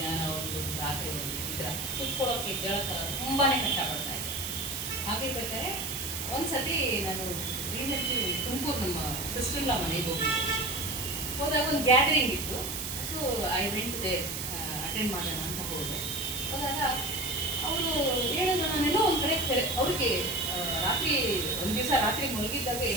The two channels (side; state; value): right; noise; hiss, 4 dB below the sound